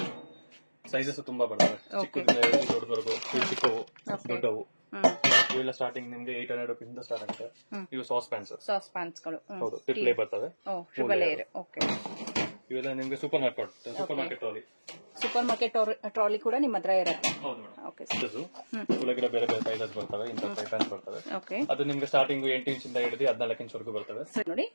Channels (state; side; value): inverted; both; correlation -1.00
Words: ಸೈಜಸ್ ತುಂಬಾ ಬರ್ತವೆ, ಚಿಕ್ಕದಿಂದ ದೊಡ್ಡವರೆಗೂ, ಚಿಕ್ಕವು ದೊಡ್ಡವು. ಇವೆಲ್ಲ ಸ್ಟಾರ್ಟಿಂಗ್ ನಿಮ್ಗೆ 800 ರೂಪೀಸ್ ಇಂದ ಸ್ಟಾರ್ಟ್ ಆಗುತ್ತೆ. ಇವು ಸಾಸ್ ಪ್ಯಾನ್ಸ್ ಗಳು, ಹೌದು, ಟ್ರಿಪ್ಲೇ ಬರ್ತವೆ. ಇವೆಲ್ಲ ನಿಮ್ಗೆ ಸೂಪರ್ ಮಾರ್ಕೆಟ್ ಟ್ರಾಲಿ ಕೂಡ ನಿಮ್ಮ ಹತ್ರ ಇರುತ್ತೆ. ಬೇರೆ ಬೇರೆ ಸೈಜಸ್ ಬರ್ತವೆ, ಇಂಥ ಫ್ರೈ ಪ್ಯಾನ್ಸ್ ಬರ್ತವೆ. ಅದು ನಿಮ್ಗೆ ಸ್ಟಾರ್ಟಿಂಗ್ 8 ಇಂಚಿಂದ ಹಿಡಿದು 14 ಇಂಚ್ ಬರ್ತವೆ. ನೋಡಿ,